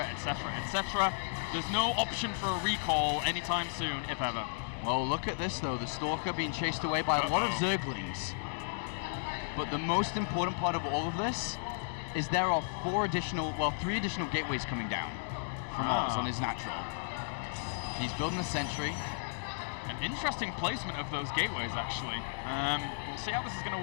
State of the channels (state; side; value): silent; right; digital silence